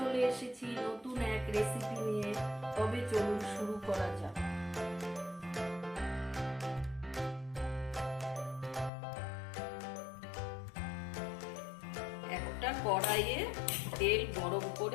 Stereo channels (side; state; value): right; drops out; at 8.9 s